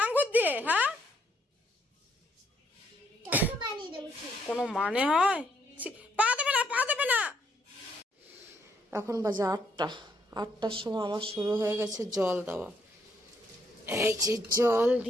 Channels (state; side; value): normal; both; correlation 0.72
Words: আঙ্গুর দিয়ে? হ্যাঁ, কোনো মানে হয়? পা দেবে না, পা দেবে না। এখন বাজে 8টার সময় আমার শুরু হয়ে গেছে জল দেওয়া। এই যে জল